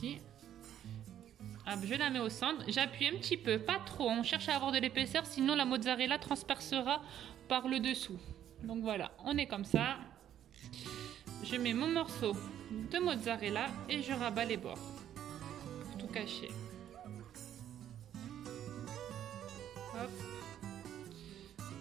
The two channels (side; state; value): left; quieter; 10.7 dB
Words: Hop, je la mets au centre. J'appuie un petit peu, pas trop. On cherche à avoir de l'épaisseur, sinon la mozzarella transpercera par le dessous. Donc voilà, on est comme ça. Je mets mon morceau de mozzarella et je rabats les bords pour tout cacher. Hop.